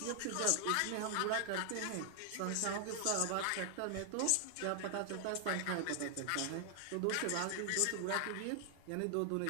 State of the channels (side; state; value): both; different; correlation 0.00